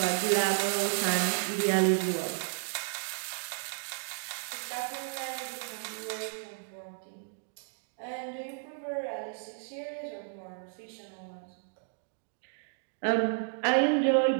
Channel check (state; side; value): silent; left; digital silence